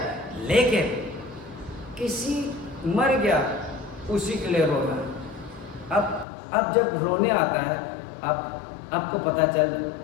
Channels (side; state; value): right; drops out; at 6.2 s